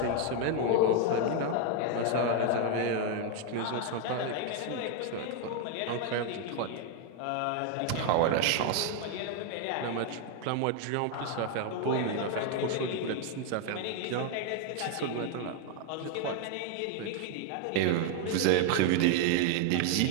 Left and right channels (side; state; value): both; different; correlation 0.00